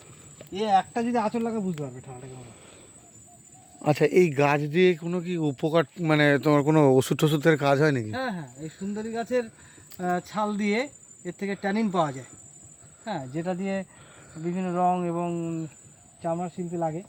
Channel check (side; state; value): both; identical; correlation 1.00